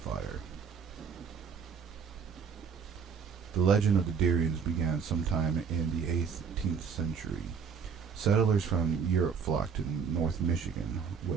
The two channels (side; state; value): left; quieter; 6.4 dB